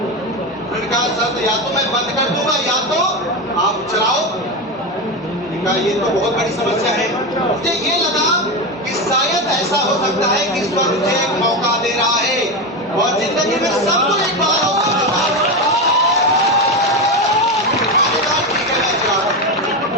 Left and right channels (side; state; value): both; normal; correlation 0.16